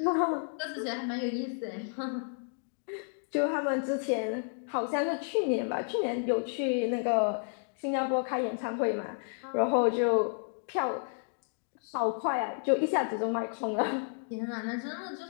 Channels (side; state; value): right; silent; 57 dB below the other